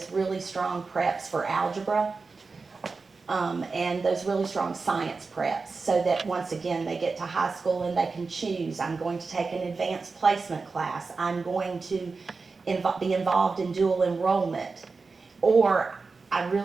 really strong preps for algebra and those really strong science preps, so that once again they get to high school and they can choose, I'm going to take an advanced placement class, I'm going to be involved in dual enrollment, or I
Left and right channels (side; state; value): left; quieter; 4.3 dB